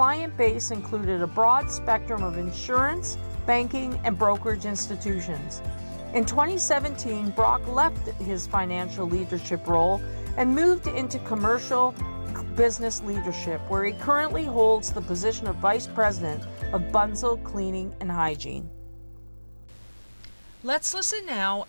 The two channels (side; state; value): both; inverted; correlation -1.00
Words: base included a broad spectrum of insurance, banking, and brokerage institutions. In 2017, Brock left his financial leadership role and moved into commercial business leadership, where he currently holds the position of Vice President of Bunzl Cleaning and Hygiene. Let's listen now